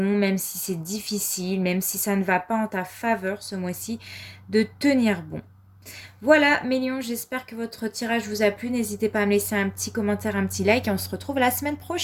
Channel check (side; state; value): both; identical; correlation 1.00